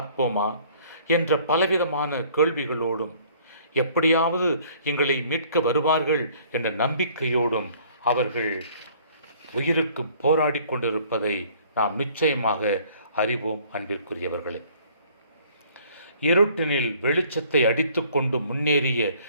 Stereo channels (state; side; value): inverted; both; correlation -0.56